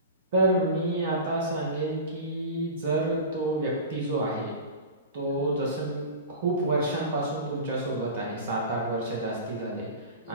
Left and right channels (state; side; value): inverted; both; correlation -0.32